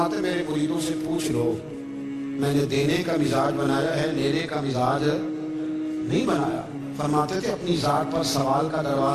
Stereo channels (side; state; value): both; identical; correlation 1.00